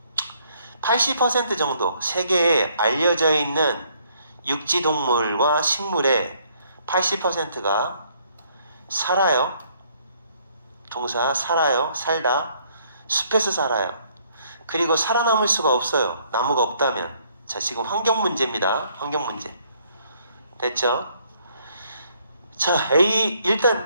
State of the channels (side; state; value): both; inverted; correlation -0.66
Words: 80% 정도, 세계에 알려져 있는 육지동물과 식물의 80%가 살아요. 동사 살아요. 살다. 숲에서 살아요. 그리고 살아남을 수가 없어요. 나무가 없다면. 자, 지금 환경 문제입니다. 환경 문제. 됐죠? 자, A